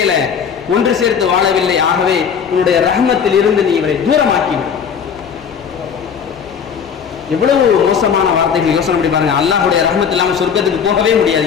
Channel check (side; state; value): right; quieter; 7.1 dB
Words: ஒன்று சேர்த்து வாழவில்லை. ஆகவே உன்னுடைய ரஹமத்தில் இருந்து நீ இவரை தூரமாக்கிவிடு. எவ்வளவு மோசமான வார்த்தைகள். யோசனை பண்ணி பாருங்க. அல்லாஹ்வுடைய ரஹமத் இல்லாமல் சொர்க்கத்துக்கு போகவே முடியாது.